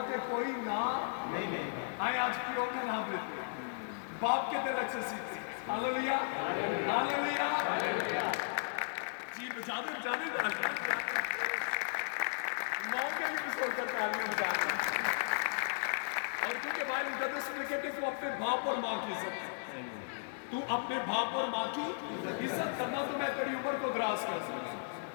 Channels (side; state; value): right; silent; digital silence